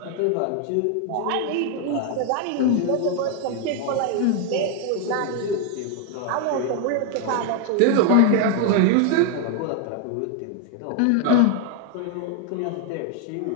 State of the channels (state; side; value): different; both; correlation 0.01